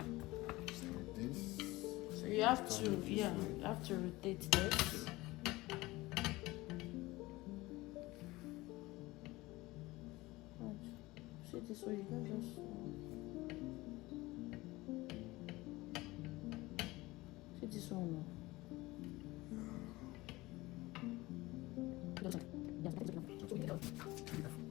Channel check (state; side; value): quieter; right; 20.1 dB